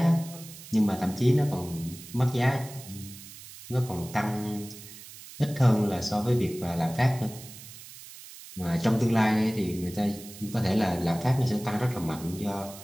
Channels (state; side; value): noise; right; hiss, 16 dB below the sound